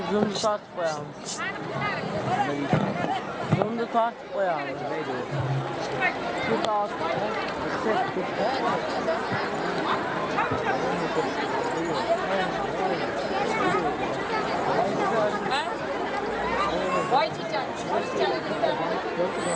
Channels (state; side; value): identical; both; correlation 1.00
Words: zoom start koyalım. Zoom'da start koyalım. Şu altı. Vay çiçek.